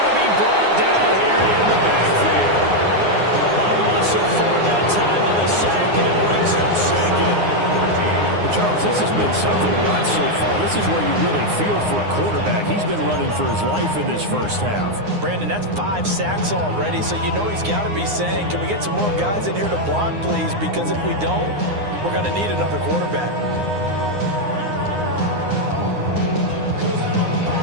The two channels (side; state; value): left; late; 9.7 ms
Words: to be brought down here in the backfield. A loss of 4 that time on the sack, and it brings up 2nd. Well, Charles, this has been something to watch so far. This is where you really feel for a quarterback. He's been running for his life in this first half. Brandon, that's 5 sacks already, so you know he's got to be saying, can we get some more guys in here to block, please? Because if we don't, we're going to need another quarterback.